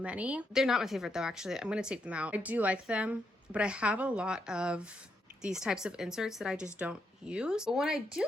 They're not my favorite though, actually. I'm gonna take them out. I do like them, but I have a lot of these types of inserts that I just don't use. But when I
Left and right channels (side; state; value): both; normal; correlation 0.80